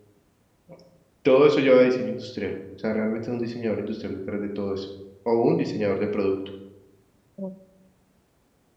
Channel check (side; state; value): both; identical; correlation 1.00